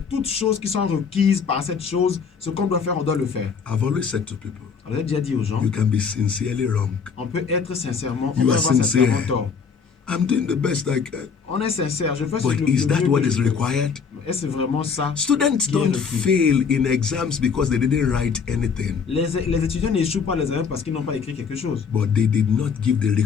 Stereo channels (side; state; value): right; quieter; 6.0 dB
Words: toutes choses qui sont requises par cette chose, ce qu'on doit faire, on doit le faire. I've always said to people, Alors, j'ai déjà dit aux gens, you can be sincerely wrong. on peut être sincèrement, on You peut are avoir sincere. sincèrement tort. I'm doing the best I can. On est sincère, je fais ce But que is le that mieux what que is je peux. required? Est-ce vraiment ça? Students qui est don't requis? fail in exams because they didn't write anything, Les étudiants n'échouent pas les examens parce qu'ils n'ont pas écrit quelque chose. but they did not give the